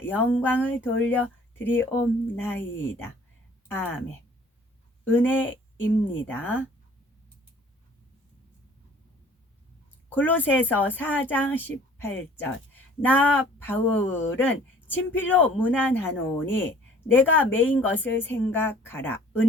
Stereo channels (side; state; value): both; normal; correlation 0.52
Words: 영광을 돌려드리옵나이다. 아멘. 은혜입니다. 골로새서 4장 18절. 나 바울은 친필로 문안하노니 내가 매인 것을 생각하라.